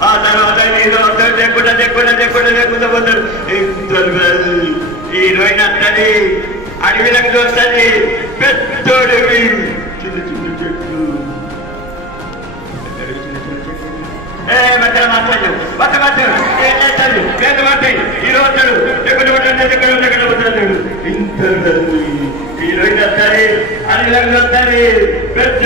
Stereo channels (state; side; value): normal; both; correlation 0.26